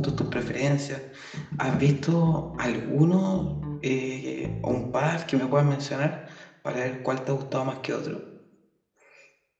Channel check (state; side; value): identical; both; correlation 1.00